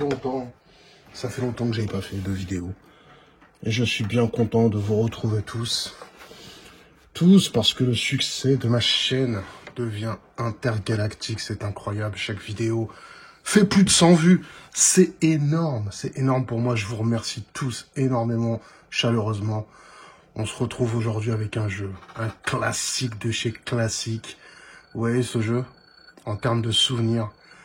que j'ai pas fait de vidéo. Et je suis bien content de vous retrouver tous. Tous parce que le succès de ma chaîne devient intergalactique, c'est incroyable. Chaque vidéo fait plus de 100 vues, c'est énorme pour moi. Je vous remercie tous énormément, chaleureusement. On se retrouve aujourd'hui avec un jeu, un classique de chez classique. Vous voyez ce jeu, en termes de souvenirs,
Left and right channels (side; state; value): both; identical; correlation 1.00